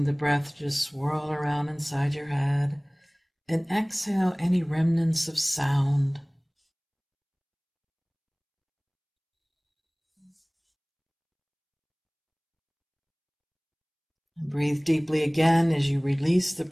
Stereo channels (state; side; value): identical; both; correlation 1.00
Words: the breath to swirl around inside your head, and exhale any remnants of sound. And breathe deeply again. As you release the